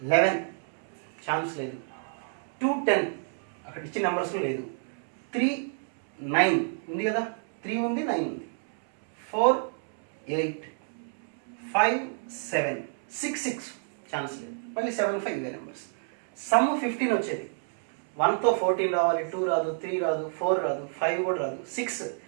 11 ఛాన్స్ లేదు. 2, 10 అక్కడ ఇచ్చిన నెంబర్స్ లేదు. 3, 9 ఉంది కదా, 3 ఉంది, 9 ఉంది. 4, 8, 5, 7, 6 ఛాన్స్ లేదు, మళ్ళీ 7, 5 ఇవే నెంబర్స్. సమ్ 15 వచ్చేది. 1తో 14 రావాలి, 2 రాదు, 3 రాదు, 4 రాదు, 5 కూడా రాదు.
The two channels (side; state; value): left; silent; 59 dB below the other